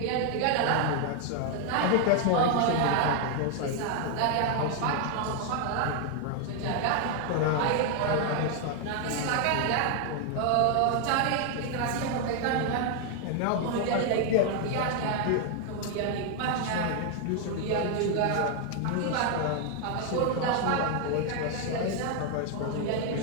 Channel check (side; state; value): both; different; correlation 0.00